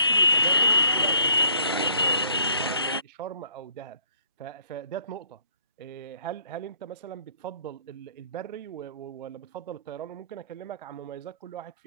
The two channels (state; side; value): inverted; both; correlation -0.64